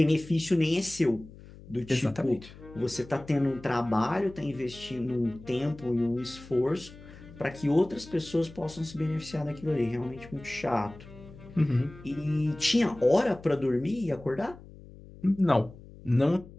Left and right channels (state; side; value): noise; left; hum, 19 dB below the sound